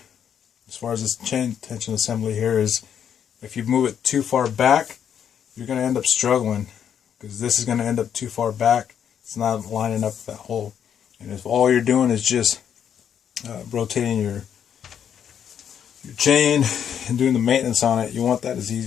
as far as this chain tension assembly here, is if you move it too far back, you're going to end up struggling, because this is going to end up too far back. It's not lining up that hole. And if all you're doing is just rotating your chain and doing the maintenance on it, you want that as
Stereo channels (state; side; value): quieter; right; 8.6 dB